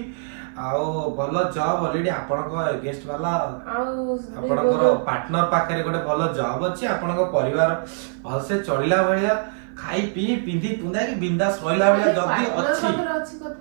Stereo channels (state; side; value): silent; left; 56 dB below the other